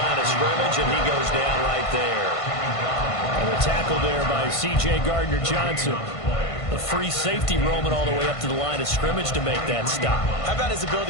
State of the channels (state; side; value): late; right; 1.5 ms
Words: of scrimmage, and he goes down right there. And the tackle there by C.J. Gardner-Johnson. The free safety roaming all the way up to the line of scrimmage to make that stop. How about his